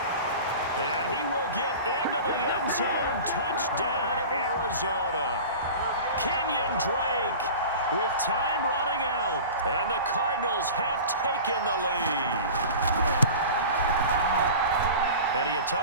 And he will get into the end zone. Touchdown, Arizona. Kenyon Drake with time running out. And the Cardinals have taken the lead. And he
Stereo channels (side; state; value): both; inverted; correlation -0.36